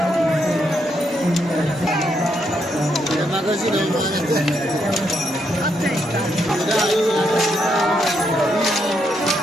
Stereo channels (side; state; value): both; normal; correlation 0.78